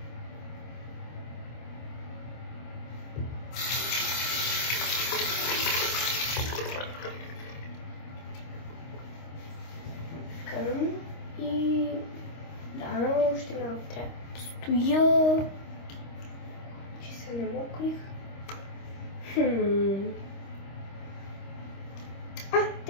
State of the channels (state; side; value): late; right; 26 ms